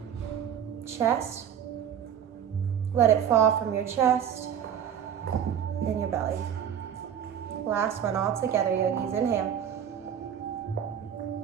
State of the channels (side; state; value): left; quieter; 8.9 dB